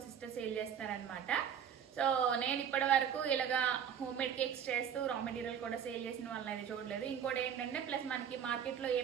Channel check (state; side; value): quieter; left; 8.4 dB